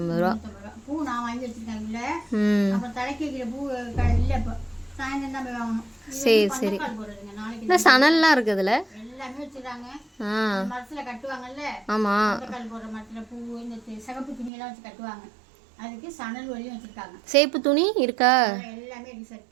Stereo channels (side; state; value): left; drops out; at 14.5 s